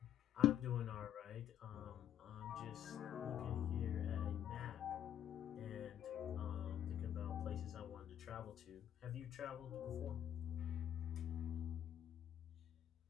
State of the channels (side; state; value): right; quieter; 10.7 dB